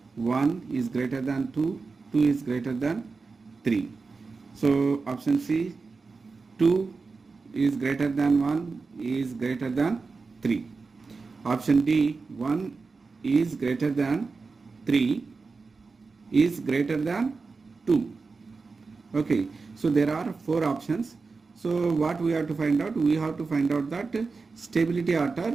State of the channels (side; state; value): left; quieter; 4.3 dB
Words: 1 is greater than 2, 2 is greater than 3. So option C, 2 is greater than 1 is greater than 3. Option D, 1 is greater than 3 is greater than 2. Okay, so there are 4 options. So what we have to find out? We have to find out that stability